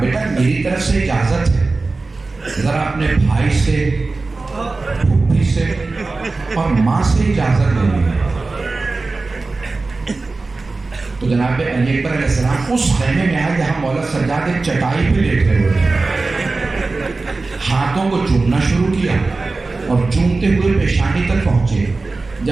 میری طرف سے اجازت ہے, ذرا اپنے بھائی سے, پھوپھی سے اور ماں سے اجازت لے لی. تو جناب علی اکبر علیہ السلام اس خیمے میں آئے جہاں مولا سجاد ایک چٹائی پہ لیٹے ہوئے تھے. ہاتھوں کو چومنا شروع کیا اور چومتے ہوئے پیشانی تک پہنچے.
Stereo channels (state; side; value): quieter; left; 3.6 dB